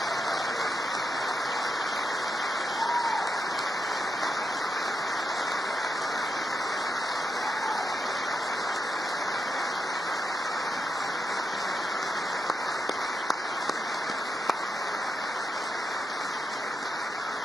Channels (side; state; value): both; normal; correlation 0.84